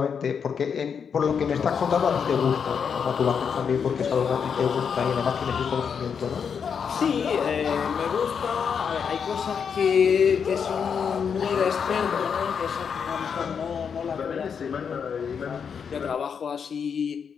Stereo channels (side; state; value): right; quieter; 6.8 dB